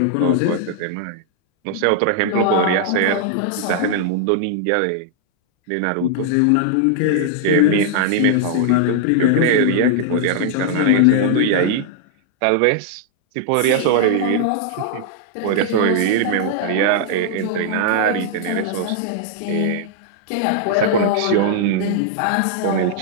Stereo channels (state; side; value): different; both; correlation -0.01